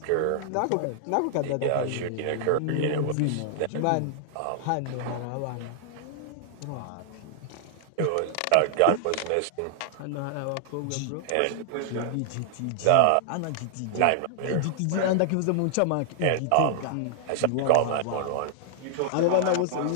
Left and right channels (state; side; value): different; both; correlation -0.01